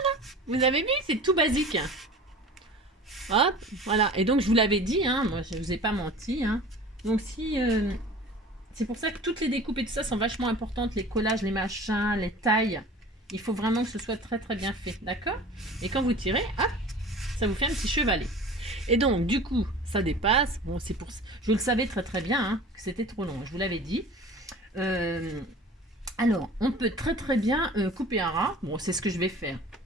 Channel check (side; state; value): both; normal; correlation 0.41